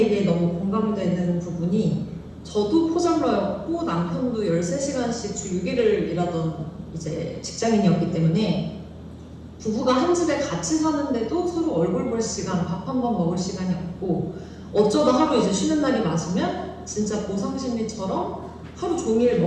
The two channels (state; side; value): identical; both; correlation 1.00